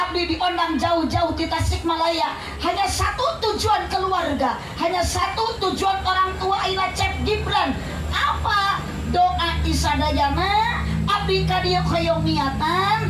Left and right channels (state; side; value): identical; both; correlation 1.00